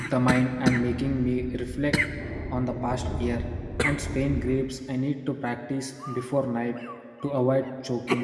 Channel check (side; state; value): both; identical; correlation 1.00